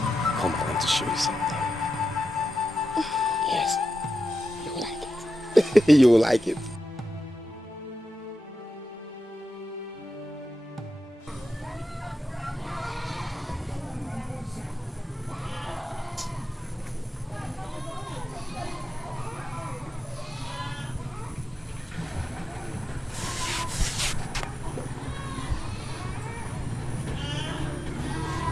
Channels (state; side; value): normal; both; correlation 0.90